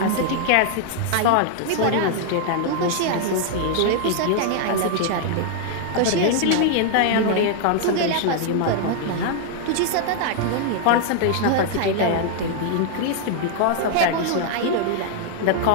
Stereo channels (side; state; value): both; different; correlation 0.00